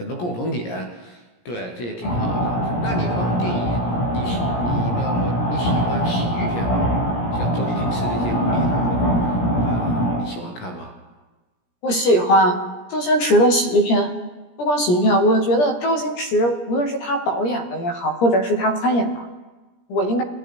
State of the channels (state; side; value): late; right; 17 ms